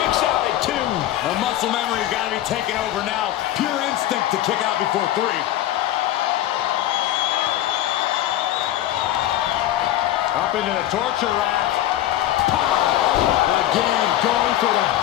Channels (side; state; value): right; quieter; 13.3 dB